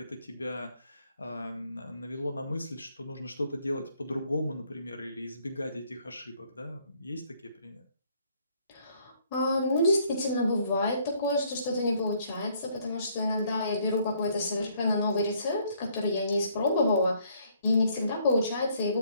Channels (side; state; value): both; inverted; correlation -0.66